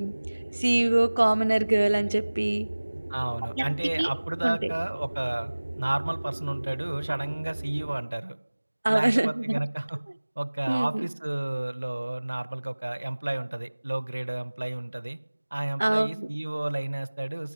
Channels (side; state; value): both; inverted; correlation -1.00